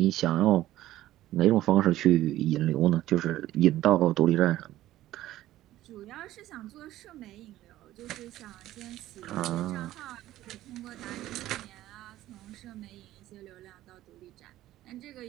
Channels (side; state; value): left; quieter; 14.7 dB